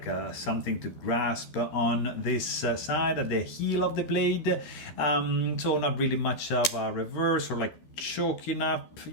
something to grasp on this side at the heel of the blade. So not really much of a reverse or like choking up.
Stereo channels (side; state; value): right; late; 12 ms